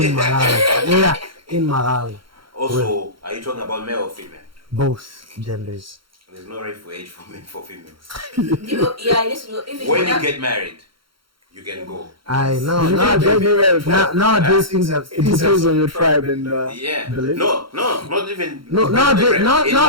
Malawi. Yeah, in Malawi. Also, are you talking about male or female? Both genders. There's no rifle age for females. When you get married, you can go. Nowadays things have. It depends on your tribe and belief. Not even.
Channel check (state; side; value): late; left; 0.73 ms